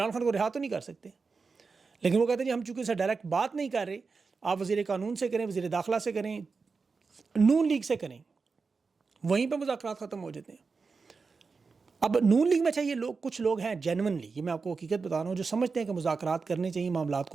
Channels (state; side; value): quieter; left; 4.7 dB